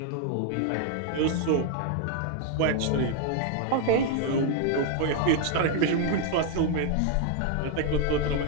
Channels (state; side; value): different; both; correlation 0.00